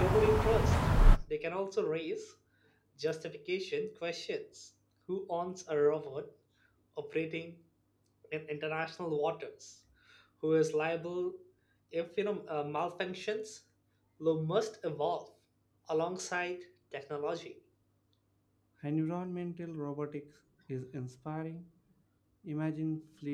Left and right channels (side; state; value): both; identical; correlation 1.00